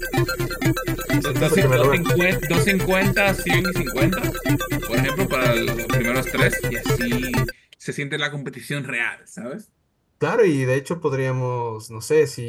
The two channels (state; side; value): identical; both; correlation 1.00